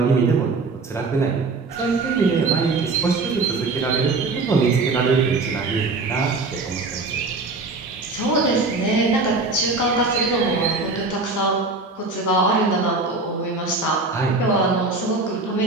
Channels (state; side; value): quieter; left; 3.6 dB